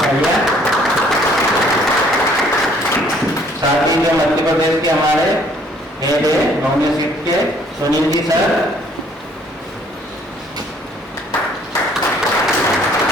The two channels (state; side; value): normal; both; correlation 0.61